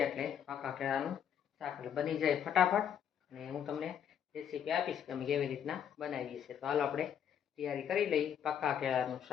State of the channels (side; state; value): right; quieter; 8.7 dB